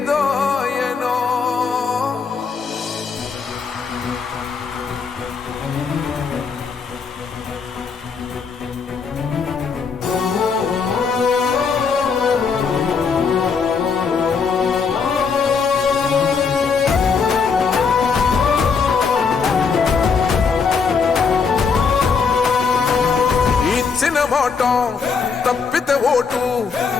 మాట తప్పితే ఓటు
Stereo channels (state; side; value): quieter; right; 5.4 dB